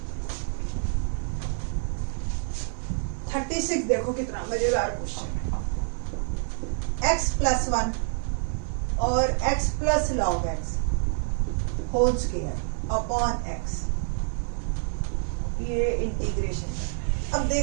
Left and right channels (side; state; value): left; silent; 60 dB below the other